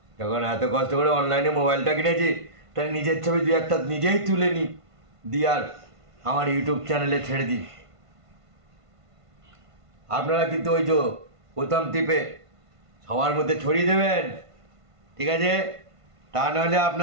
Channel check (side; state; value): left; late; 1.5 ms